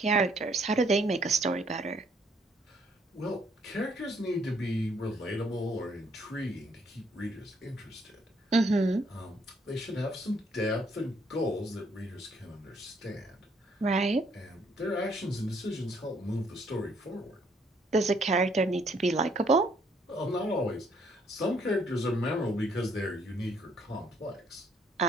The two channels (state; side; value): normal; both; correlation 0.67